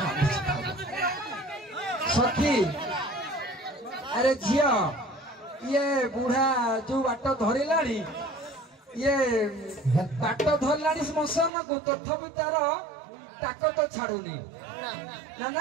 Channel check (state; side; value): drops out; left; at 11.5 s